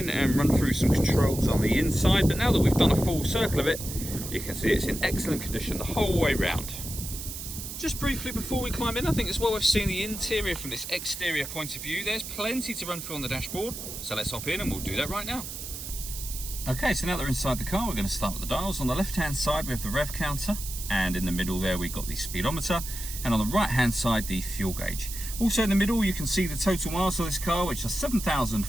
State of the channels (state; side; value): noise; right; hiss, 8 dB below the sound